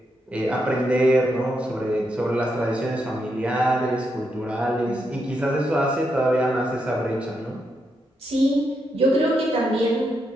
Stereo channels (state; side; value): normal; both; correlation 0.81